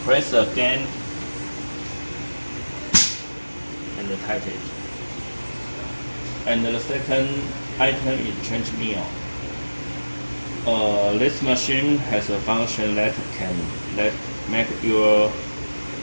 press again and tighten it. And the second item is change meal. This machine has a function that can make your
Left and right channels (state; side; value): inverted; both; correlation -1.00